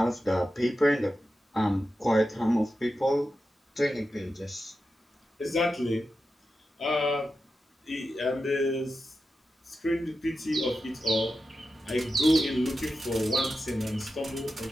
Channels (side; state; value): both; normal; correlation 0.91